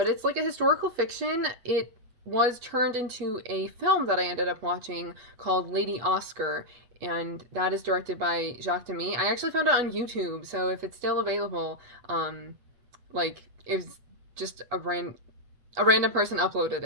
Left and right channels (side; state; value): left; late; 8.3 ms